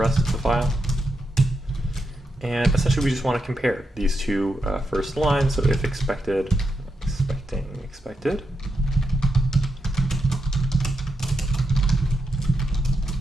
of the file. And essentially we just want to compare these two first lines. So if expected, expected,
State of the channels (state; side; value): normal; both; correlation 0.84